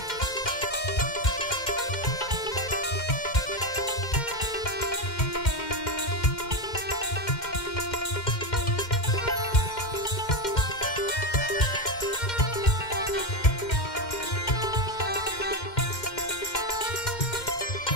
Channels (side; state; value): right; late; 2.1 ms